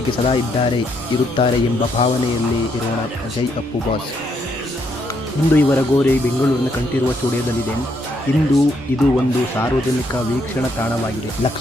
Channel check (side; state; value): both; normal; correlation 0.74